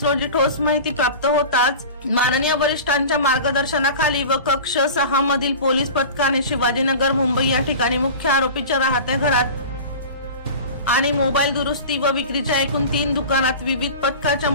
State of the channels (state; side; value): inverted; both; correlation -0.34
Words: रोजी ठोस माहिती प्राप्त होताच माननीय वरिष्ठांच्या मार्गदर्शनाखाली व कक्ष 6 मधील पोलीस पथकाने शिवाजीनगर मुंबई या ठिकाणी मुख्य आरोपीच्या राहत्या घरात आणि मोबाईल दुरुस्ती व विक्रीच्या एकूण 3 दुकानात विविध पथकाच्या